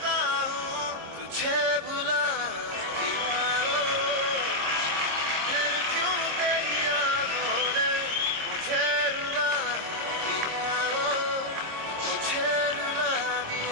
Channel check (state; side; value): late; left; 26 ms